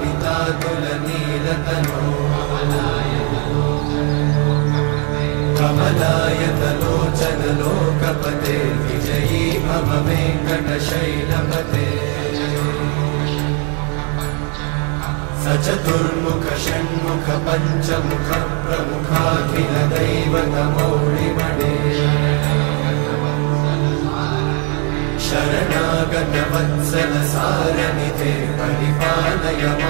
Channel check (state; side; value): quieter; left; 37.0 dB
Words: सचतुर्मुख षण्मुख पंचमुख प्रमुखाखिल दैवतमौलिमणे शरणागत वत्सल सारनिधे परिपालय